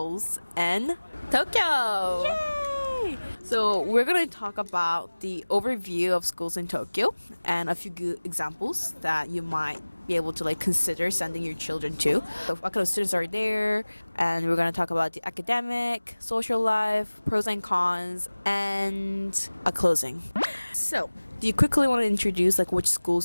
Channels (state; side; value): inverted; both; correlation -1.00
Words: in Tokyo. Yay! So we're gonna talk about the overview of schools in Tokyo and a few good examples that you might be able to consider sending your children to. So what kind of students are there, and we're gonna talk about the academic, social life, pros and cons, and a closing. So, do you quickly want to introduce which